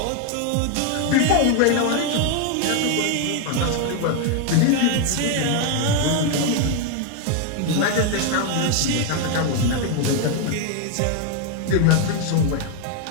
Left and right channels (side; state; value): both; different; correlation 0.01